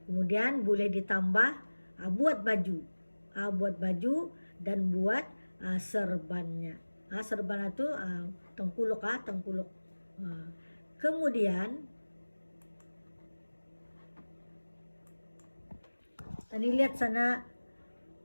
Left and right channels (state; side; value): inverted; both; correlation -1.00